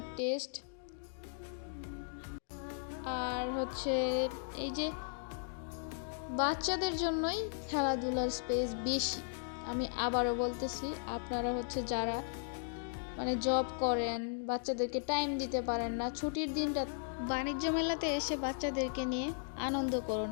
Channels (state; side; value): silent; right; digital silence